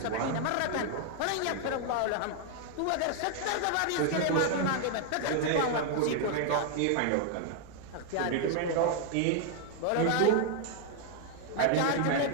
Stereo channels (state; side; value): different; both; correlation 0.00